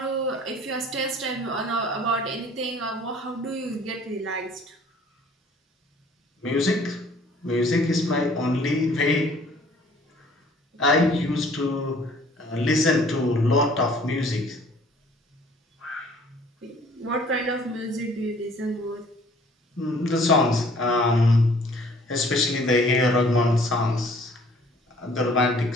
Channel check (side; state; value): both; normal; correlation 0.55